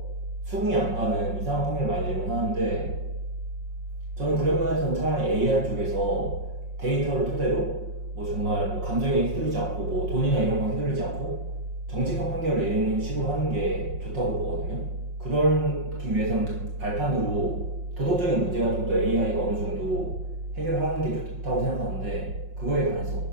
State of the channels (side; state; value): left; late; 5.5 ms